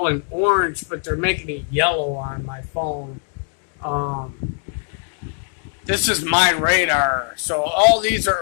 in orange, but they're making it yellow on my phone. This is my radar. So all these are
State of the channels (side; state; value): right; silent; 58 dB below the other